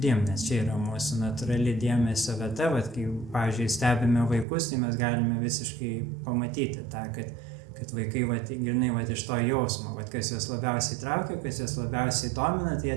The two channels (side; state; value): left; drops out; at 4.5 s